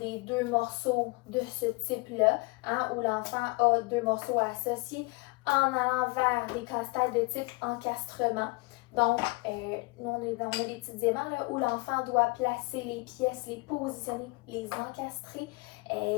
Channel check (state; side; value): quieter; right; 26.2 dB